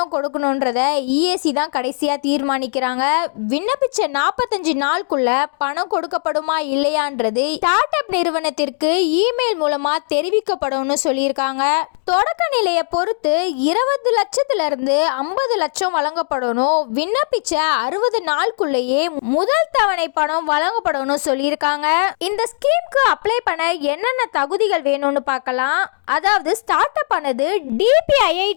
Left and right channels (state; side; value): silent; right; digital silence